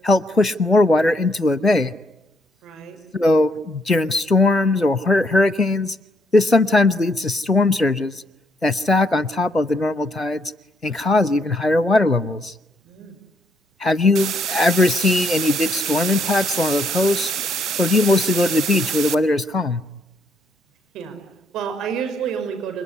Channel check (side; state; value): both; normal; correlation 0.72